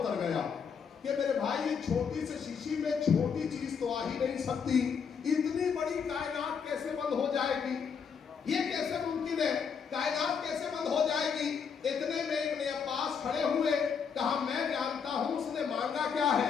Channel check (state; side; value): quieter; right; 6.5 dB